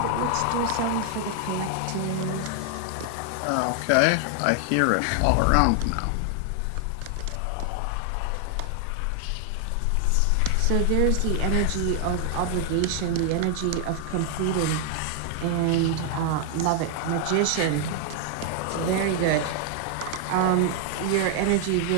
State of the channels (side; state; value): both; different; correlation 0.00